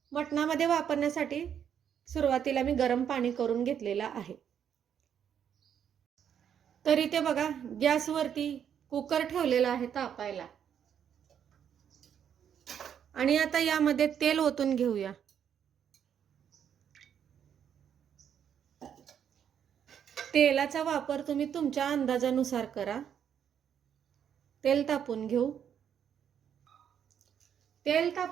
मटणामध्ये वापरण्यासाठी सुरुवातीला मी गरम पाणी करून घेतलेलं आहे। तर इथे बघा, गॅसवरती कुकर ठेवलेला आहे तापायला आणि आता यामध्ये तेल ओतून घेऊया। तेलाचा वापर तुम्ही तुमच्या अंदाजानुसार करा। तेल तापून घेऊ। तेल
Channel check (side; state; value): left; quieter; 8.6 dB